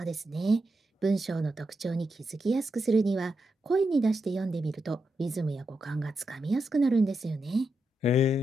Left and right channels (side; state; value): both; normal; correlation 0.85